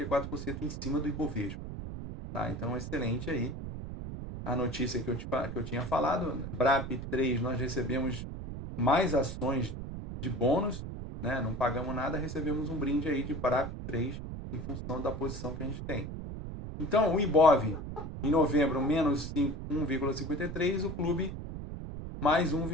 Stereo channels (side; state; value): right; noise; rumble, 8 dB below the sound